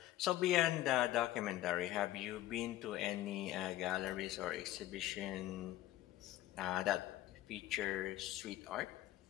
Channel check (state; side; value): quieter; right; 14.9 dB